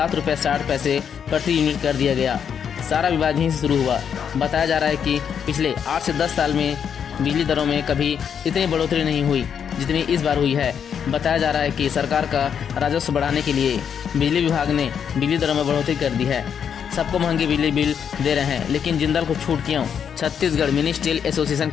रुपये 60 पैसे प्रति यूनिट कर दिया गया। सारा विवाद यहीं से शुरू हुआ। बताया जा रहा है कि पिछले 8 से 10 साल में बिजली दरों में कभी इतनी बढ़ोतरी नहीं हुई जितनी इस बार हुई है। बताया जा रहा है कि सरकार का राजस्व बढ़ाने के लिए बिजली विभाग ने बिजली दरों में बढ़ोतरी कर दी है। सबको महंगी बिजली बिल दे रहे हैं, लेकिन जिंदल को छूट क्यों। छत्तीसगढ़ मिनी स्टील एसोसिएशन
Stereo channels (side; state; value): right; quieter; 7.8 dB